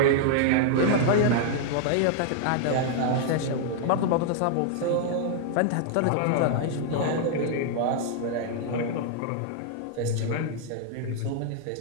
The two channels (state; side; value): different; both; correlation 0.00